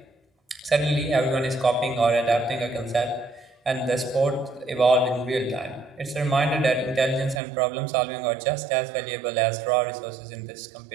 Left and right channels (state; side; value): drops out; left; at 7.4 s